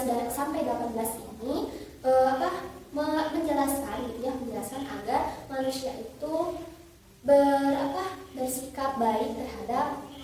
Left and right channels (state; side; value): identical; both; correlation 1.00